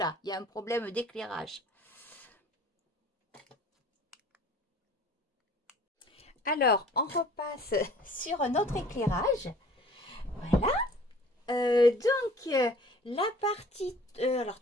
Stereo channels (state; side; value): normal; both; correlation 0.50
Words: il y a un problème d'éclairage. Alors, on repasse sur notre éclairage. Voilà. La partie... alors,